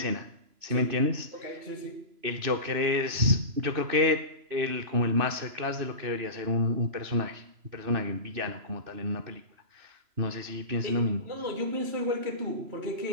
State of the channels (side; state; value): left; late; 3.0 ms